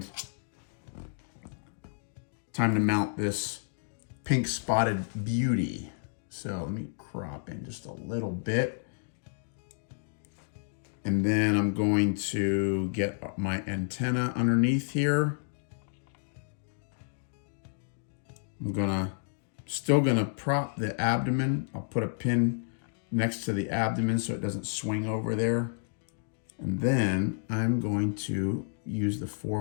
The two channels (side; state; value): right; silent; digital silence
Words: time to mount this pink spotted beauty. So let me crop in just a little bit. And then I'm going to get my antenna underneath here. I'm still gonna prop the abdomen. I'll put a pin next to the abdomen so it doesn't swing over there. And then I'm going to use the